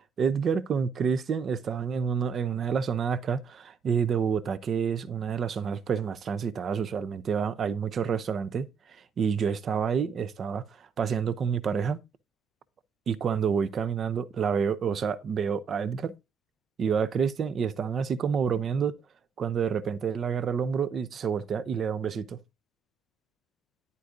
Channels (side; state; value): left; quieter; 6.4 dB